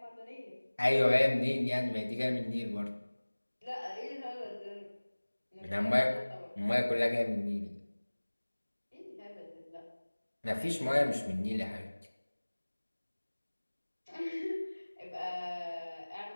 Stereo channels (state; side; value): inverted; both; correlation -1.00